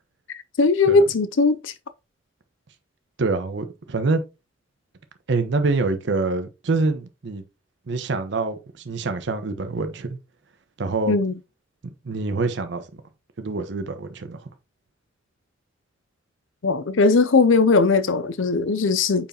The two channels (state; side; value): normal; both; correlation 0.20